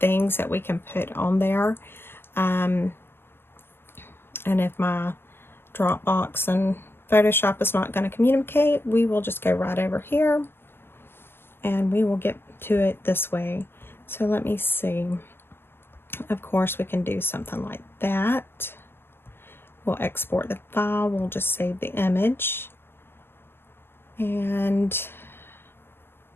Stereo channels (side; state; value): right; late; 0.11 ms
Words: that we can put on there. And if my Dropbox and Photoshop is not going to communicate, we will just go right over here and we will get to it this way. So let me see. Of course, we can do something like that. We'll export the file. We'll just save the image. And